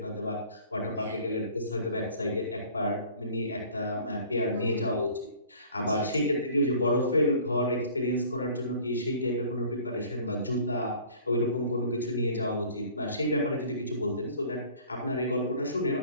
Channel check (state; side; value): inverted; both; correlation -0.49